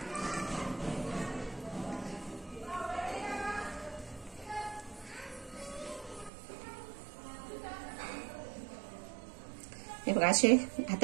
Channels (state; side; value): drops out; left; at 6.3 s